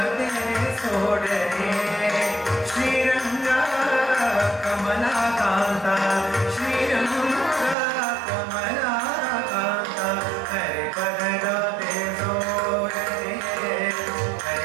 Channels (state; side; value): drops out; left; at 7.8 s